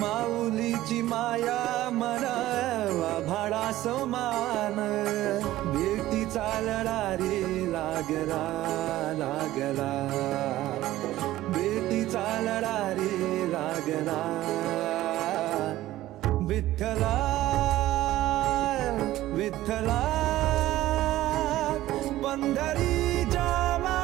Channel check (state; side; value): quieter; left; 15.4 dB